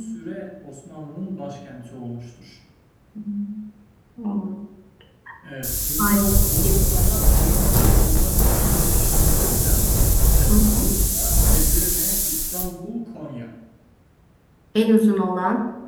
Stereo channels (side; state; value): both; identical; correlation 1.00